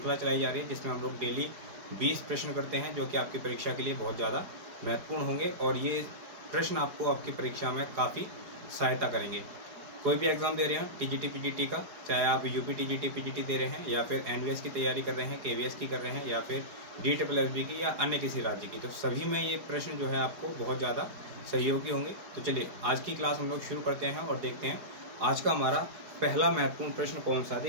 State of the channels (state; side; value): late; left; 4.8 ms